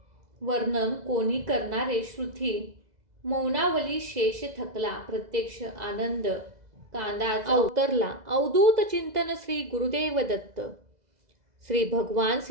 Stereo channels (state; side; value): late; left; 2.0 ms